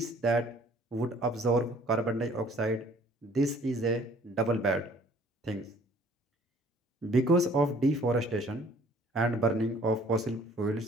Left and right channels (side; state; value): both; normal; correlation 0.56